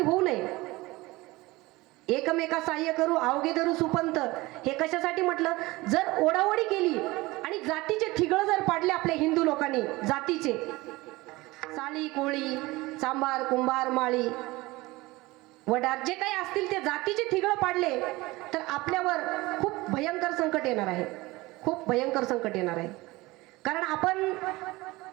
होऊ नये. एकमेका सहाय्य करू अवघे धरू सुपंत. हे कशासाठी म्हटलं? जर ओढाओढी केली आणि जातीचे थिगळ जर पाडले आपल्या हिंदू लोकांनी, जातीचे साळी कोळी चांभार कुंभार माळी वडार जे काही असतील ते जातीचे थिगळ पाडले तर आपल्यावर खूप भयंकर संकट येणार आहे. खूप भयंकर संकट येणार आहे. कारण आपण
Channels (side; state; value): left; quieter; 20.9 dB